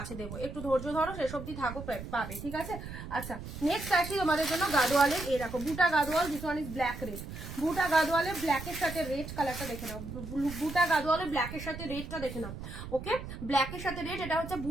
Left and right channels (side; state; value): right; noise; rumble, 10 dB below the sound